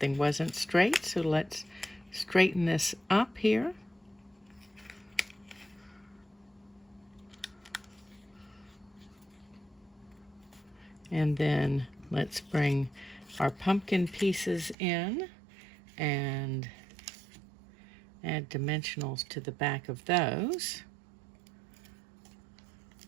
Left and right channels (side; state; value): left; drops out; at 14.8 s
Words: wasn't straight, so let's straighten this up here. And then let's bring our pumpkin pieces in and add dimensionals to the back of those.